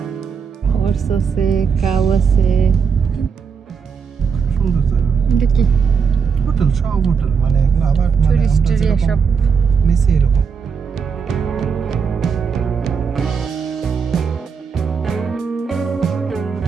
হর্স আছে, কাউ আছে। সুন্দর জায়গা। এটা কি হোটেল? সব হোটেল, মানে এগুলো আবার টুরিস্ট এরিয়া সব নিচে এরকম।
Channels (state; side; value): quieter; left; 6.0 dB